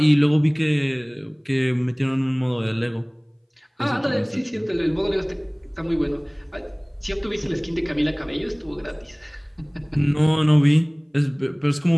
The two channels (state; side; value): identical; both; correlation 1.00